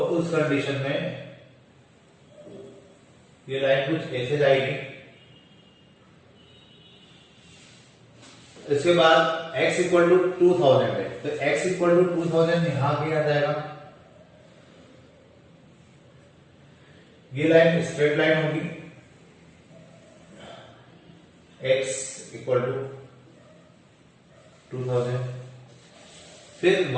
उस कंडीशन में ये लाइन कुछ ऐसे जाएगी। इसके बाद x इक्वल टू 2000 है, तो x इक्वल टू 2000 यहां भी आ जाएगा। ये लाइन स्ट्रेट लाइन होगी, x इक्वल टू 2000। फिर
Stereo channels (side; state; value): both; identical; correlation 1.00